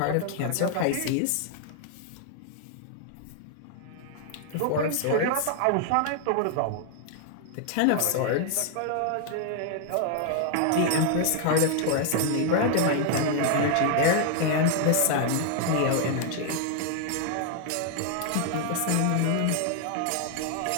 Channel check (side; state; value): both; different; correlation 0.00